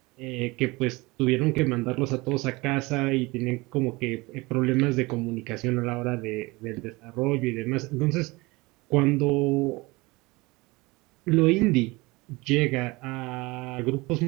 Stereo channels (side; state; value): left; quieter; 23.3 dB